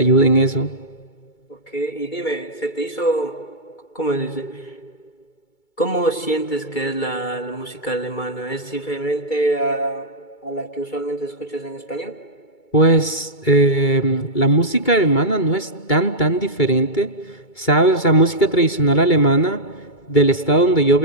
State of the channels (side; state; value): right; late; 2.3 ms